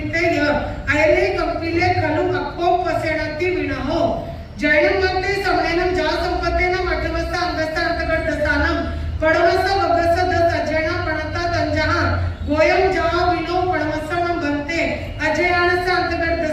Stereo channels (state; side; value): identical; both; correlation 1.00